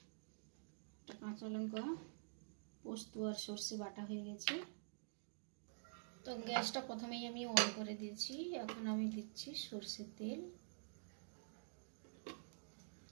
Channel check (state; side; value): silent; left; digital silence